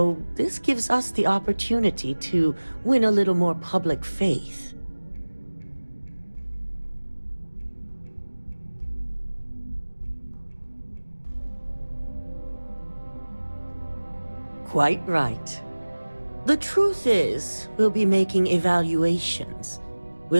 this gives us the opportunity to win a little more public faith. Quite right. The truth is, we'll be making evaluations.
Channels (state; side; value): inverted; both; correlation -1.00